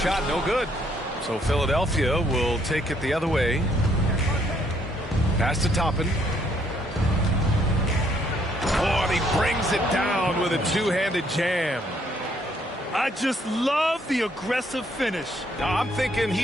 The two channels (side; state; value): both; normal; correlation 0.68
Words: no good. So Philadelphia will take it the other way. Pass to Toppin. Oh, and he brings it down with a two-handed jam. I just love the aggressive finish. Now, I'm thinking